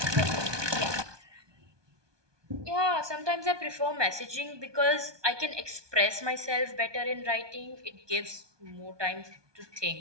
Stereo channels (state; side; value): late; left; 1.2 ms